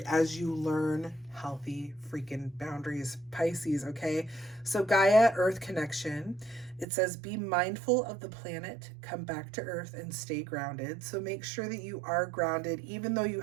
as you learn healthy freaking boundaries, Pisces, okay? So Gaia, Earth connection. It says, be mindful of the planet, come back to Earth and stay grounded. So make sure that you are grounded, even though you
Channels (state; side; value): drops out; left; at 6.9 s